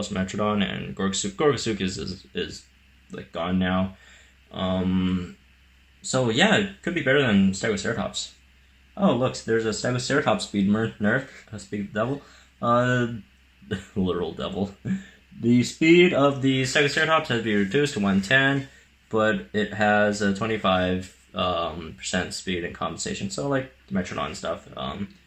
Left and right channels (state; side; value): identical; both; correlation 1.00